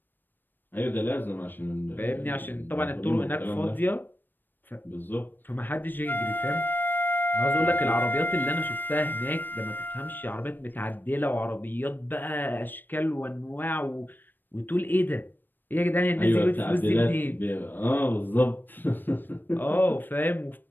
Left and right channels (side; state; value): right; late; 0.093 ms